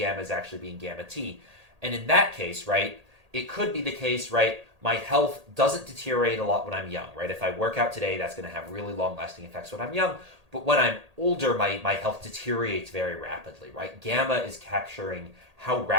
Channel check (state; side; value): late; left; 1.8 ms